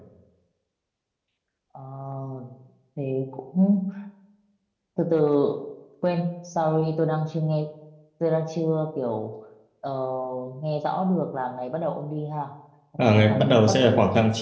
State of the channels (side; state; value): both; identical; correlation 1.00